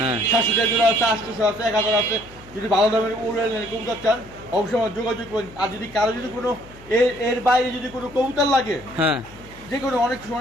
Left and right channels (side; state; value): left; noise; hum, 21 dB below the sound